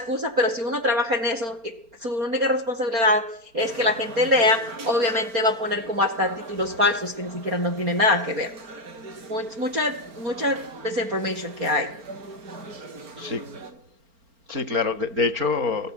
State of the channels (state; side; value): late; left; 4.4 ms